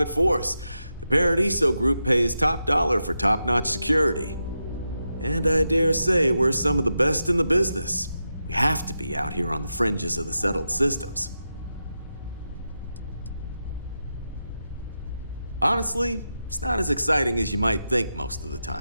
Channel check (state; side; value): inverted; both; correlation -0.88